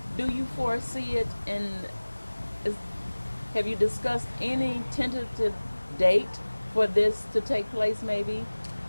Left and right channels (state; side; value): inverted; both; correlation -1.00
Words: Do you foresee it have you discussed any tentative date for this to take place maybe?